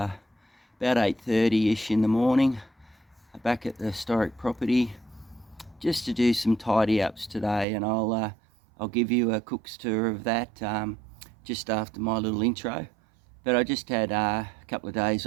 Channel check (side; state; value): left; drops out; at 7.7 s